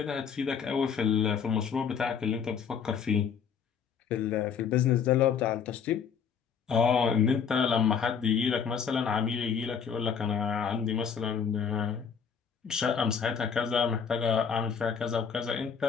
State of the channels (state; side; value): quieter; right; 6.8 dB